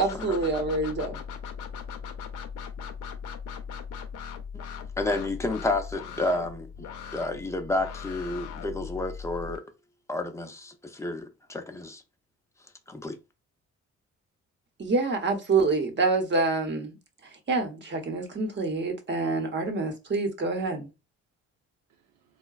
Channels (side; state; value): both; normal; correlation 0.26